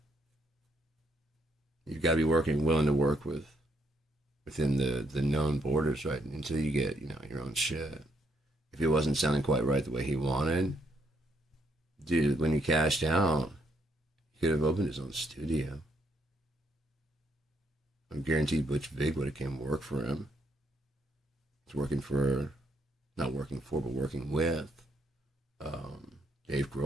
You've got to be willing to work within the known borders, right? Until you get, your own shit. If it wasn't sounding quite right the way he wanted, dude, when he cashed out, he could have opened his own studio. I'm guaranteed Butch Vig would have came work for him. He's working with Dave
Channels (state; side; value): normal; both; correlation 0.73